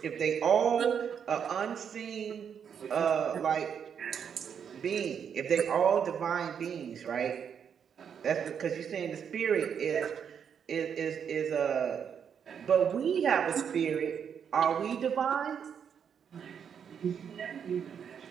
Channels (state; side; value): quieter; left; 7.6 dB